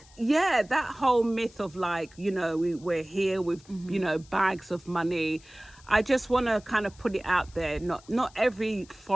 that whole myth of like, we're here with, bags of money. I just want to kind of put it out there. Not every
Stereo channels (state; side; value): noise; left; hiss, 25 dB below the sound